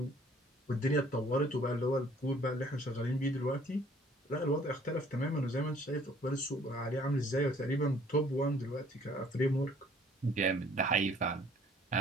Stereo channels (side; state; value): both; normal; correlation 0.58